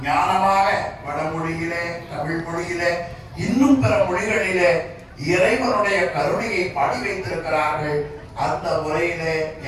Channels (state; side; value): identical; both; correlation 1.00